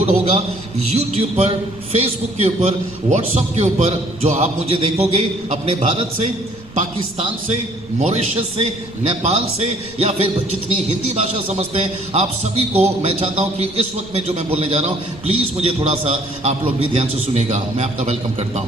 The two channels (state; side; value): noise; right; rumble, 23 dB below the sound